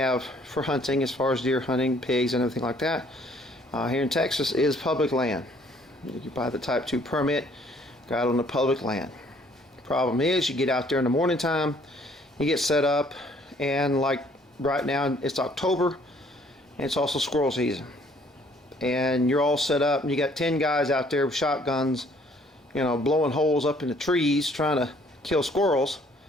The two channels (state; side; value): normal; both; correlation 0.61